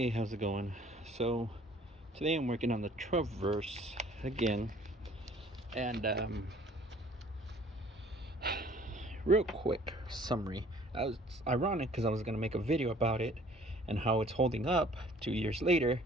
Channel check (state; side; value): normal; both; correlation 0.55